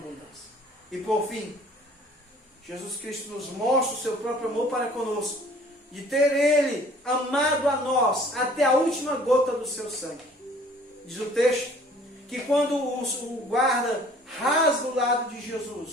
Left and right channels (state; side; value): normal; both; correlation 0.53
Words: E por fim, Jesus Cristo nos mostra o seu próprio amor para conosco, de ter Ele amado a nós até a última gota do seu sangue. Diz o texto que quando o guarda rasga o lado de